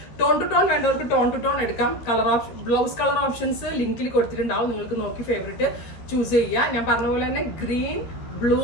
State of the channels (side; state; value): right; late; 12 ms